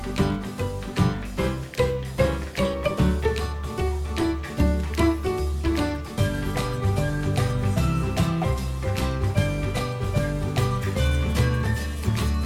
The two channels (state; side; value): identical; both; correlation 1.00